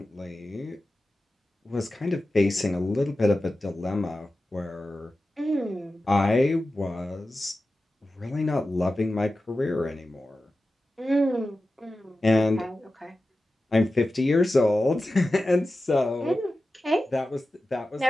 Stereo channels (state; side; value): normal; both; correlation 0.94